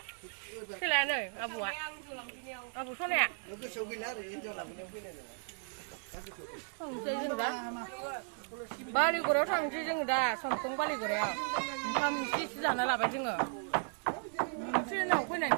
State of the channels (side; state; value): left; silent; 54 dB below the other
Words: सोलानो आबौआ आबौ सनाया थांसै जों दा बालिगुरायाव थांसै जों दा समखं बालिगुरायाव ओंखाम एसे एसे जाना लाबाय जोङो ट्रेनाव फैनानै